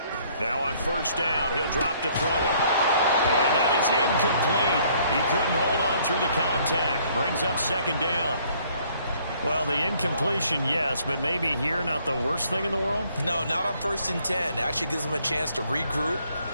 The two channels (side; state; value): both; inverted; correlation -0.63